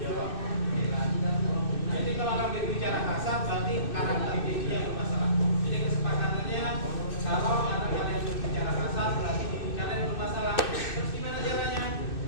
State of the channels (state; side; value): late; right; 2.6 ms